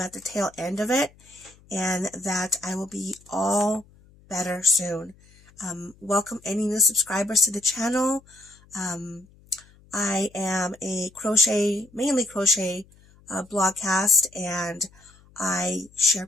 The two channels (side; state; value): left; noise; hum, 27 dB below the sound